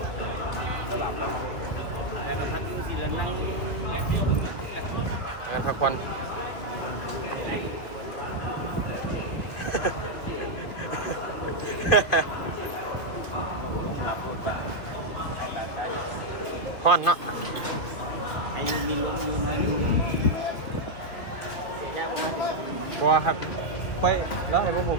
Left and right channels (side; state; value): right; late; 2.8 ms